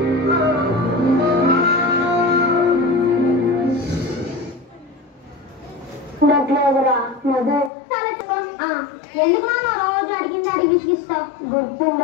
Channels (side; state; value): right; drops out; at 7.7 s